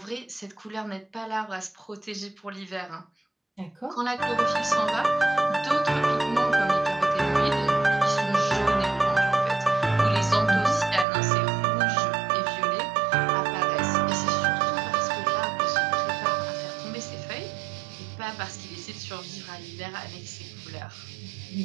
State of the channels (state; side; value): drops out; left; at 11.1 s